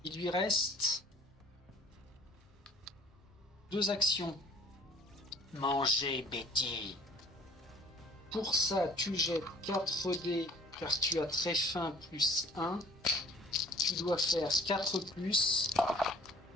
Il lui reste 2 actions. Manger, Betty. Pour ça, tu jettes 4 dés car tu as très faim plus 1. Tu dois faire 4+.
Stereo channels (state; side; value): normal; both; correlation 0.52